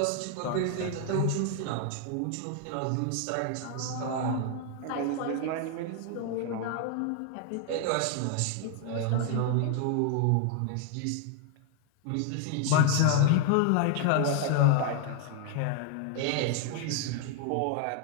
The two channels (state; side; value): different; both; correlation 0.00